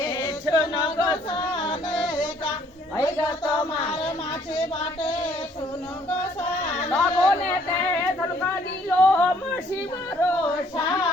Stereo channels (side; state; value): both; normal; correlation 0.63